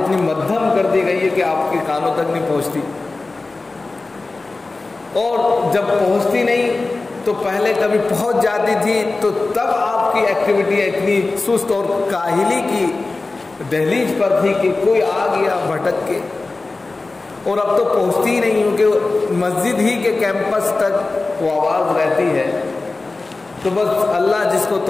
مدھم کر دی گئی ہے کہ آپ کے کانوں تک نہیں پہنچتی، اور جب پہنچتی نہیں تو پہلے کبھی پہنچ جاتی تھی تو تب آپ کی ایکٹیویٹی اتنی سست اور کاہلی کی دہلیز پر تھی کہ کوئی آ گیا بھٹک کے، اور اب تو پہنچتی ہی نہیں ہوں کہ مسجد ہی کے کیمپس تک وہ آواز رہتی ہے، تو بس اللہ جس کو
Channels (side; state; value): right; quieter; 3.4 dB